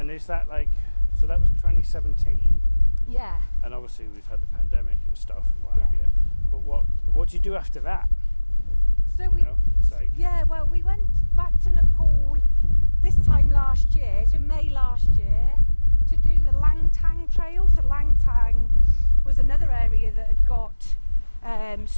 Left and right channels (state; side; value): inverted; both; correlation -1.00